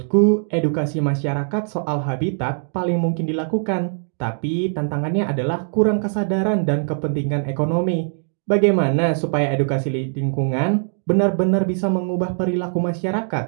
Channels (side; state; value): left; silent; digital silence